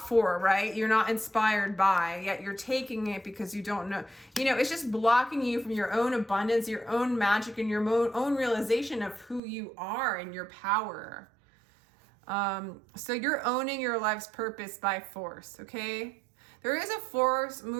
for, right? You're not inspired by, yet you're taking it because you don't know. You know, it's just blocking you from your own abundance, your own magic, and your own realization of who you are and your power. So you're owning your life's purpose by force, okay? There is a force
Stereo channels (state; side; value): drops out; left; at 9.4 s